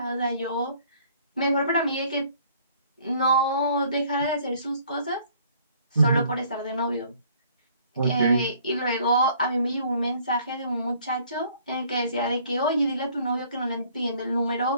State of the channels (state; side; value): inverted; both; correlation -0.59